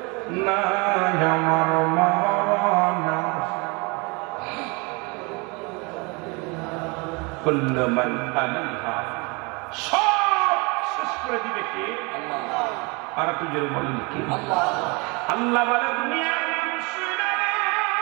না, আমার মরণ কুল্লু মান আলাইহা, সব শেষ করে দিবে কে? আল্লাহ। আর একটু জোরে বলেন কে? আল্লাহ। আল্লাহ বলে, দুনিয়ার মানুষেরা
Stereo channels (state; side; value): quieter; left; 29.1 dB